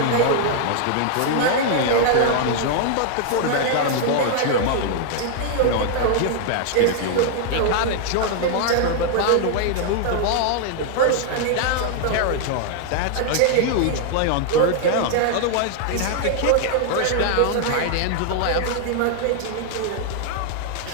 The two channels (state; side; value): different; both; correlation 0.00